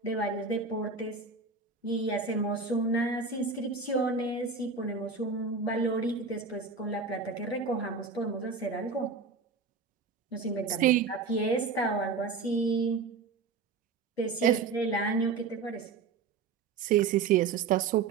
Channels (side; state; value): left; quieter; 4.8 dB